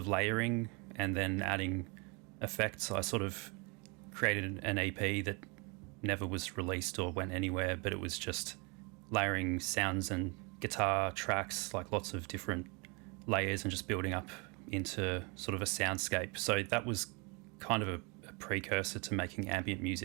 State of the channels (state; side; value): quieter; left; 31.0 dB